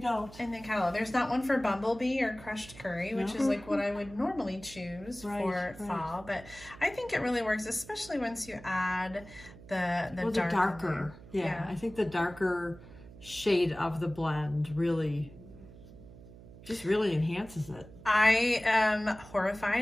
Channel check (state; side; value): noise; right; hum, 18 dB below the sound